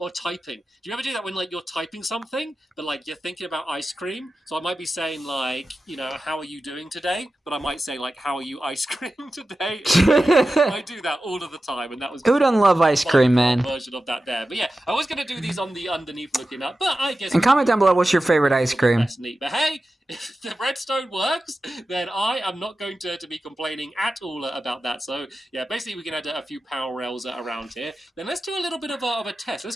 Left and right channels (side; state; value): both; normal; correlation 0.93